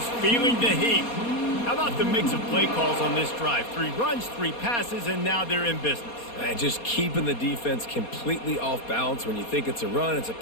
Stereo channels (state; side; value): late; right; 4.2 ms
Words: feeling the heat. How about the mix of play calls on this drive? 3 runs, 3 passes, and now they're in business. And just keeping the defense completely off balance. When you think it's a run, it's a